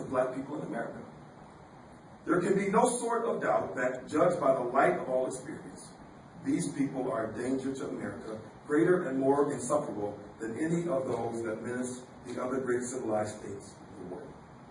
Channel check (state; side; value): identical; both; correlation 1.00